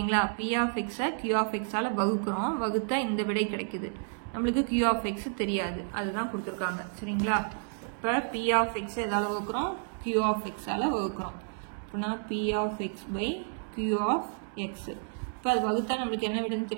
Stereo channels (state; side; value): silent; left; 56 dB below the other